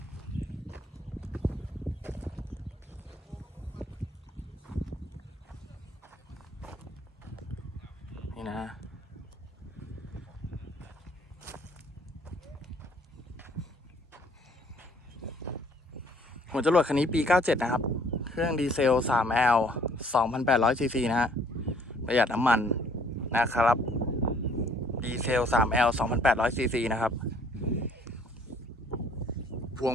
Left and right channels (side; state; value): both; normal; correlation 0.60